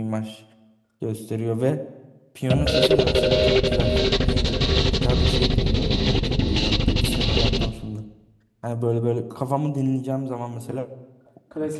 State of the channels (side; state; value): both; identical; correlation 1.00